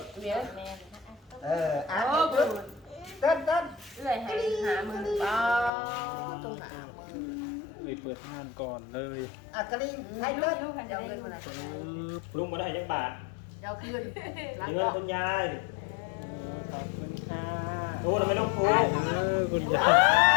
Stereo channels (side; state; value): right; drops out; at 5.7 s